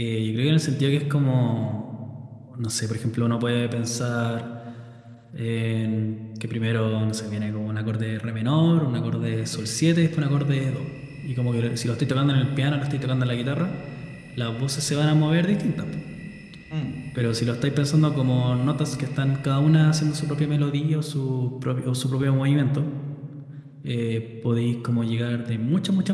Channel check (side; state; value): both; identical; correlation 1.00